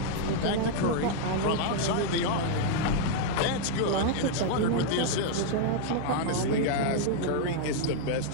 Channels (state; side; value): different; both; correlation 0.00